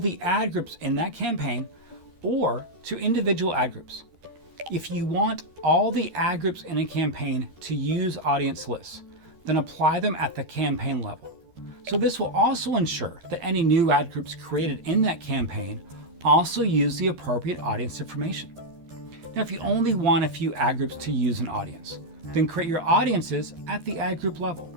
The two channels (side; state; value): left; late; 13 ms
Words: ad groups in that campaign or to individual ad groups. If you want all the ad groups in a campaign to use audience lists, then apply them at the campaign level. So this will also ensure that any new ad groups created in that campaign also use the appropriate audience information. Now, if you only want a few ad groups to use an audience, then create your audiences at the ad group level.